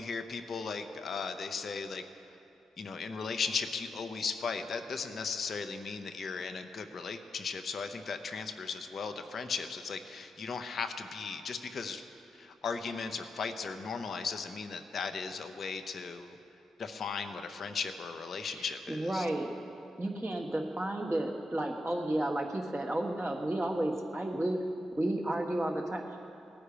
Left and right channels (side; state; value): both; normal; correlation 0.86